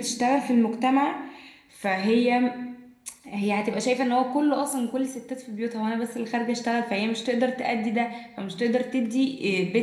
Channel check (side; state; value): both; identical; correlation 1.00